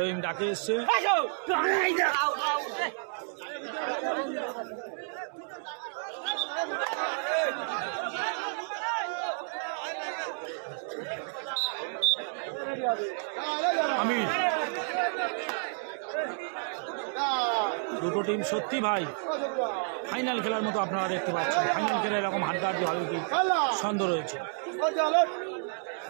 ডাকে এসছে। আমির, দুটো টিম সত্যি ভাই ফাইনাল খেলার মতো আপনারা দেখতে পাচ্ছেন। ফাইনাল খেলা এরকম হাড্ডাহাড্ডি হবে কি সন্দেহ রয়েছে।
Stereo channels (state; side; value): silent; left; 57 dB below the other